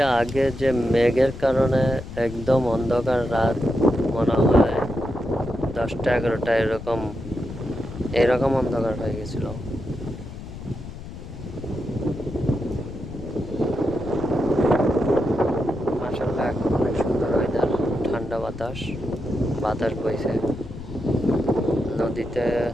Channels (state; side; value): noise; left; rumble, 12 dB below the sound